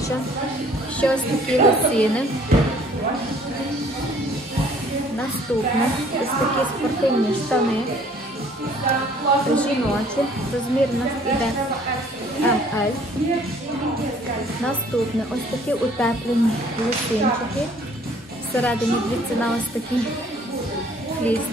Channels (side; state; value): both; normal; correlation 0.57